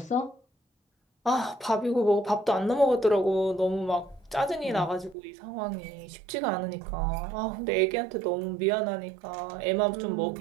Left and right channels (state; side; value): drops out; left; at 5.2 s